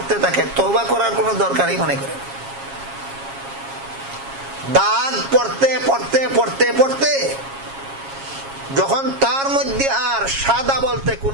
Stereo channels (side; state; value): left; late; 7.3 ms